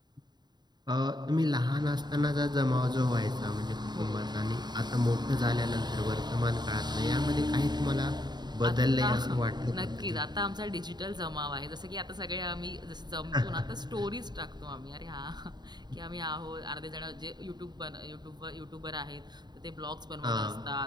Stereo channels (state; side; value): late; left; 0.21 ms